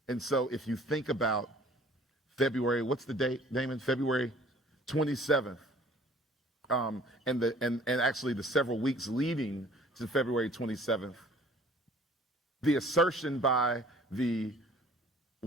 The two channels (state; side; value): normal; both; correlation 0.53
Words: And so if you think about February, what's the date, Damon? February 27th, and actually the several weeks leading to February 27th, the assertion by the